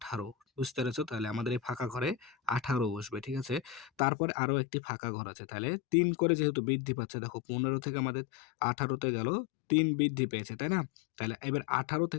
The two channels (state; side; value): drops out; right; at 3.9 s